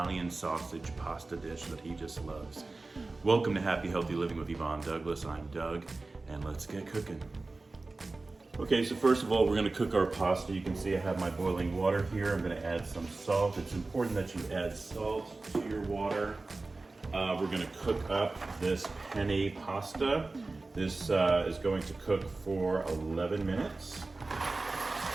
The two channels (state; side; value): quieter; left; 3.4 dB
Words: sausage pasta dish that he just loves. Welcome to Happy Healthy Living with Yvonne Douglas. I'm Doug, and let's get cooking. Okay, so first of all, we're going to cook our pasta. You can see I have my boiling water here. I'm going to add some salt. It's important that you add salt to your water. We're going to cook up this penne pasta. This is going to cook for 11 minutes.